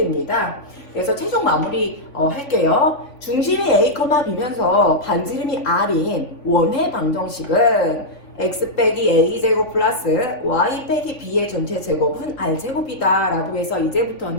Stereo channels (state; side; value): late; right; 3.5 ms